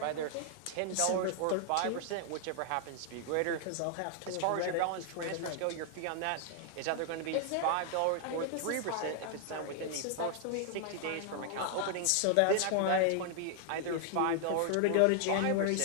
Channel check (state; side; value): different; both; correlation 0.00